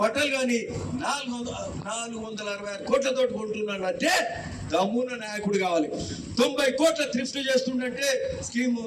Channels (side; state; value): both; identical; correlation 1.00